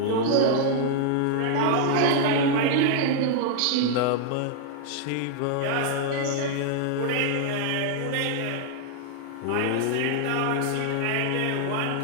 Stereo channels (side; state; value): both; different; correlation 0.00